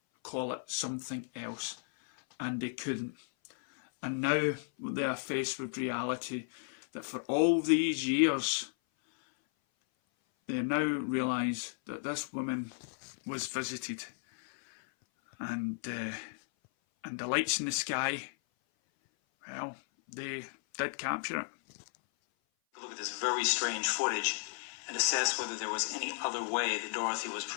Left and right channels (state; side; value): silent; right; 55 dB below the other